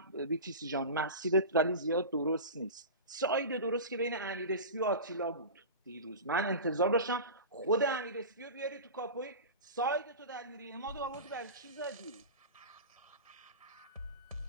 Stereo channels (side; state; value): both; inverted; correlation -0.30